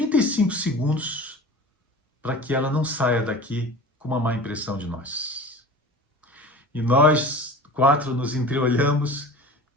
segundos para que ela não saia daqui com uma má impressão de nós. E nós quatro nos entreolhamos.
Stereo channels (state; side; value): normal; both; correlation 0.37